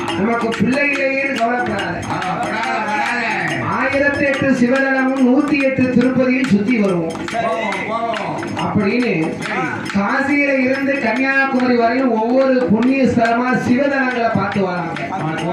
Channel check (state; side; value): identical; both; correlation 1.00